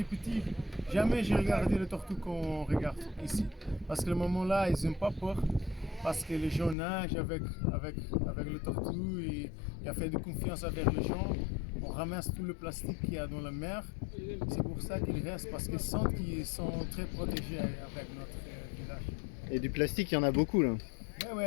petit, jamais j'ai regardé le tortue qu'on regarde ici. Parce que le moment là, ils n'ont pas peur. Parce que les gens nagent avec le tortue et il y a fait de confiance avec les gens. On ramasse tout le plastique qu'il y a dans la mer. C'est pour ça qu'ils restent, parce qu'ils sentent qu'ils sont très protégés avec notre village. Et du plastique, il y en a beaucoup là.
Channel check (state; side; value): drops out; right; at 6.8 s